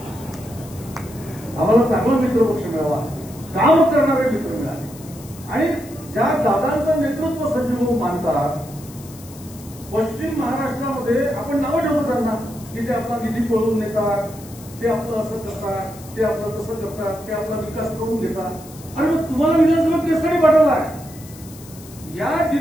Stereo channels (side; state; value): left; noise; hiss, 19 dB below the sound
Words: आम्हाला चांगला मित्रपक्ष मिळाला, काम करणारे मित्र मिळाले. आणि ज्या दादांचं नेतृत्व संजयभाऊ मानतात, पश्चिम महाराष्ट्रामध्ये आपण नावं ठेवतो त्यांना की ते आपला निधी पळवून नेतात, ते आपलं असं करतात, ते आपलं तसं करतात, ते आपला विकास करून देतात. आणि मग तुम्हाला विधानसभा केसरी पाठवला आहे. या